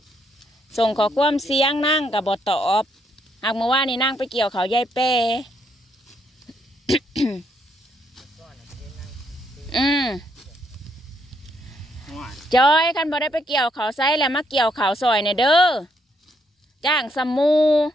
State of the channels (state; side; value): normal; both; correlation 0.74